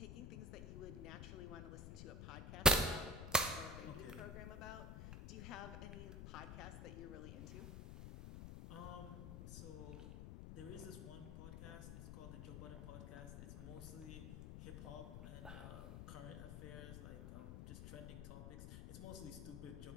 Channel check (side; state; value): left; noise; rumble, 7 dB below the sound